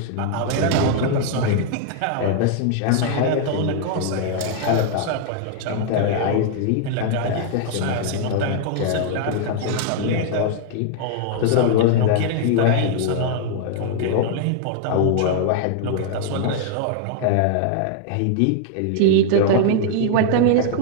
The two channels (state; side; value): different; both; correlation -0.01